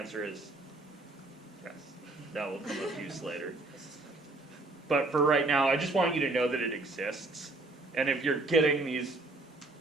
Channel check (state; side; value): quieter; left; 3.0 dB